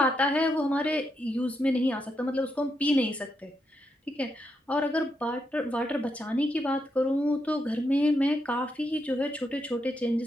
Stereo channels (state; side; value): normal; both; correlation 0.81